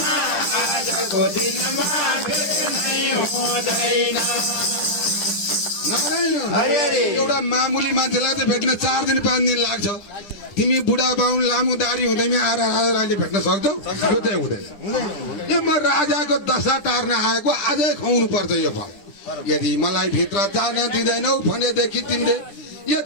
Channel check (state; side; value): late; right; 10 ms